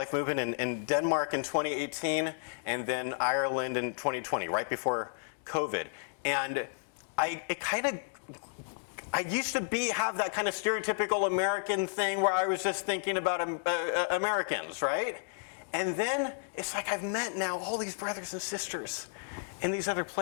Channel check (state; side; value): silent; right; digital silence